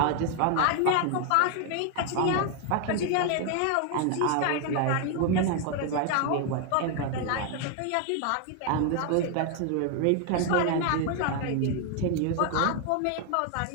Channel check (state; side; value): different; both; correlation 0.01